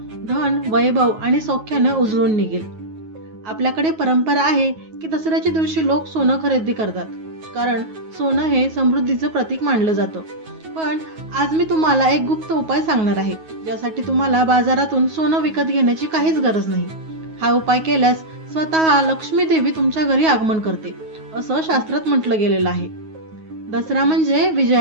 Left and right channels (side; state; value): left; late; 9.4 ms